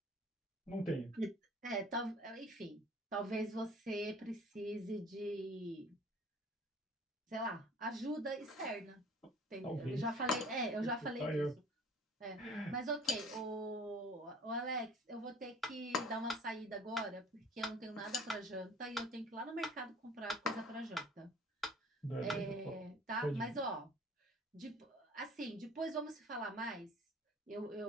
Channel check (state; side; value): normal; both; correlation 0.49